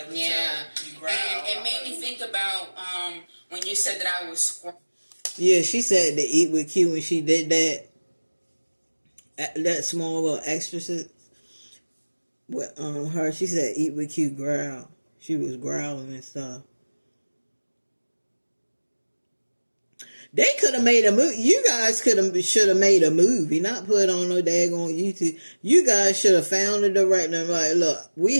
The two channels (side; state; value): both; inverted; correlation -1.00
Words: it. Yeah. You growled. And it made me think about when you said that I was squirming. Yeah, she said to eat with Q when she did that small little exorcist with her. She said eat with Q growl. She was growling and stuff. They could have made a movie. You guys should have made a movie, not put on no daggone YouTube. You guys should have found a director and like, look, we